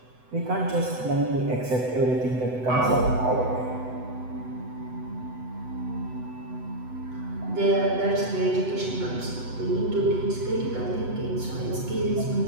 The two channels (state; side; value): late; left; 8.0 ms